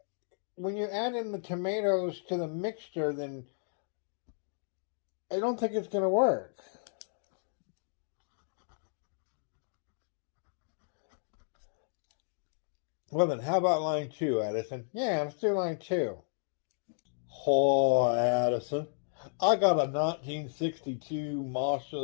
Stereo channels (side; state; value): right; silent; digital silence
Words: when you add in the tomatoes to the mixture, then I don't think it's gonna work. Well, then, how about line two, Addison? Yeah, let's do line two. Oh, Addison, I got a 1962